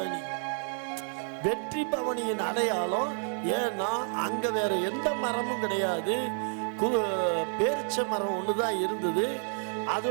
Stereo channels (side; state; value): left; silent; 58 dB below the other